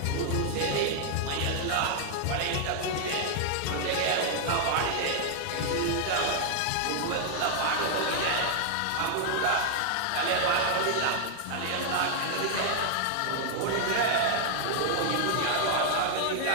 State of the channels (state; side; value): different; both; correlation 0.00